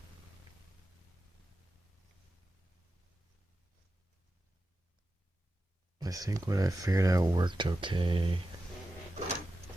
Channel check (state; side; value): normal; both; correlation 0.92